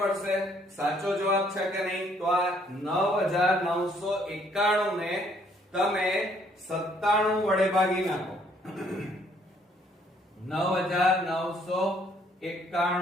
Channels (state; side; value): normal; both; correlation 0.65